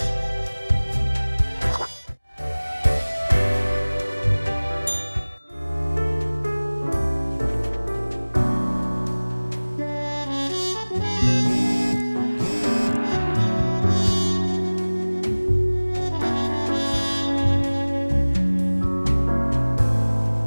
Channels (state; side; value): inverted; both; correlation -1.00